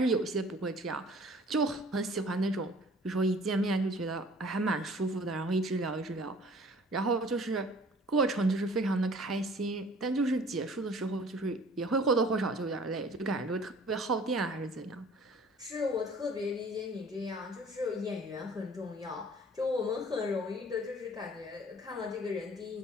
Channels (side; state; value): both; normal; correlation 0.51